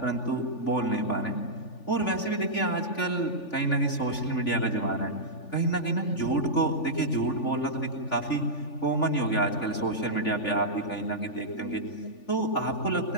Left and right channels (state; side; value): late; right; 3.4 ms